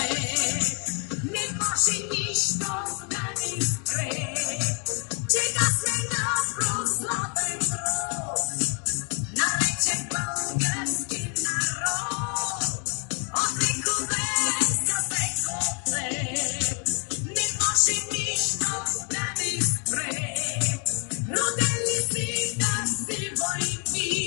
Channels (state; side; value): quieter; right; 38.7 dB